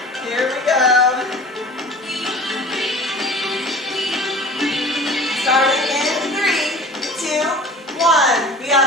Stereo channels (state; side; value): normal; both; correlation 0.42